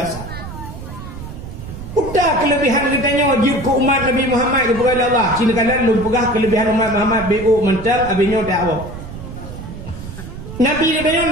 Udah kelebihan getanyo jib ke umat Nabi Muhammad kepada Allah. Cina kalian lu pegah kelebihan umat Muhammad BO mental abinyo dakwah. Nabi getanyo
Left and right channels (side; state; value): right; noise; rumble, 11 dB below the sound